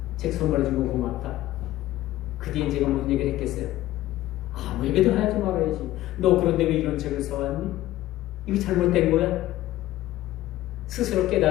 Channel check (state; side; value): quieter; right; 15.3 dB